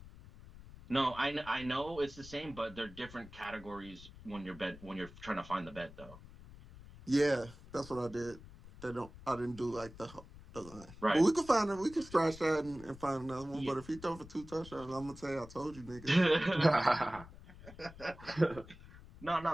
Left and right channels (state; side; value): noise; left; rumble, 18 dB below the sound